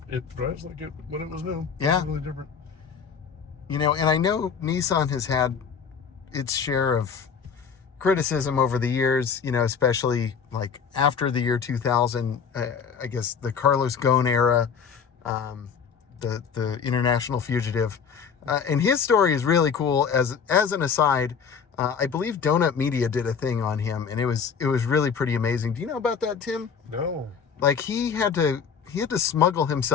drives like it when it was new. Yeah. It's really different. And I know Nissan has had its share of criticism over the years, especially like after the year 2000, I guess the Carlos Ghosn era, the international fugitive. And his story is really cool. As an aside, I believe Donut Media did a thing on him, and it was really pretty amazing. Do you know about that, Tim? No. Like he had to smuggle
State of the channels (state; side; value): quieter; right; 6.4 dB